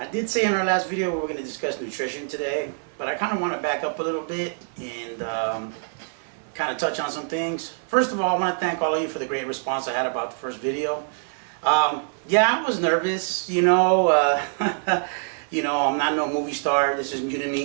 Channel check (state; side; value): silent; left; 62 dB below the other